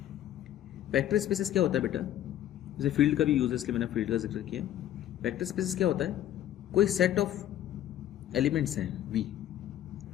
वेक्टर स्पेसेस क्या होता है बेटा? जैसे फील्ड का भी यूज है, इसलिए मैंने फील्ड का जिक्र किया। वेक्टर स्पेसेस क्या होता है? कोई सेट ऑफ एलिमेंट्स हैं V,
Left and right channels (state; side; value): quieter; right; 11.9 dB